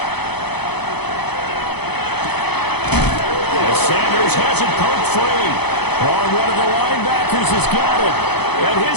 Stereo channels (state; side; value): late; right; 0.98 ms